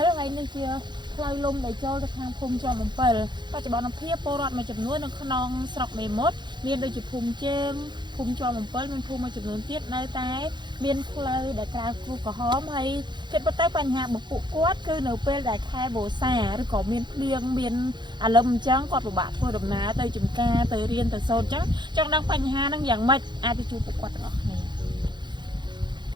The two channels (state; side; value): late; left; 0.22 ms